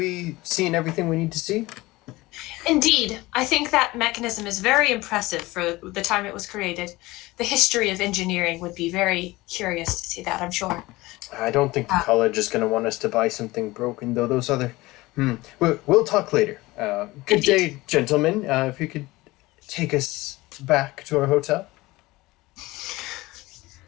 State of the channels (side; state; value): right; quieter; 20.1 dB